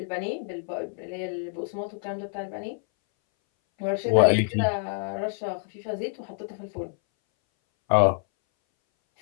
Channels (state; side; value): silent; right; 59 dB below the other